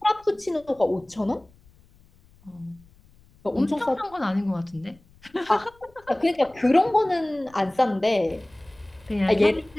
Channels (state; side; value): noise; left; rumble, 29 dB below the sound